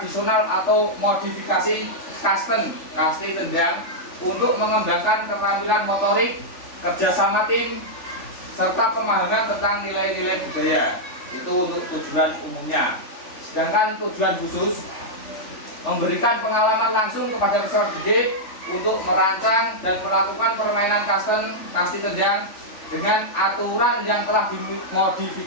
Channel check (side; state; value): right; late; 3.4 ms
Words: atau modifikasi custom, kasti tendang, untuk mengembangkan keterampilan motorik, kerjasama tim, serta pemahaman tentang nilai-nilai budaya. Itu untuk tujuan umumnya. Sedangkan tujuan khusus, memberikan pengalaman langsung kepada peserta didik untuk merancang dan melakukan permainan custom, kasti tendang dengan aturan yang telah